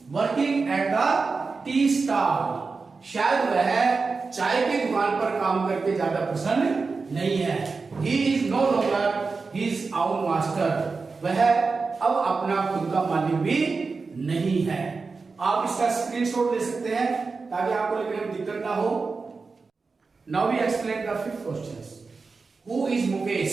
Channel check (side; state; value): left; quieter; 4.4 dB